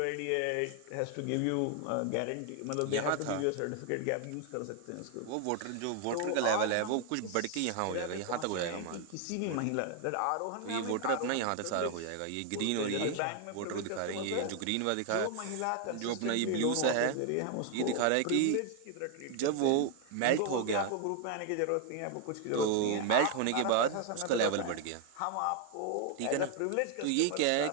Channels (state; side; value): different; both; correlation 0.00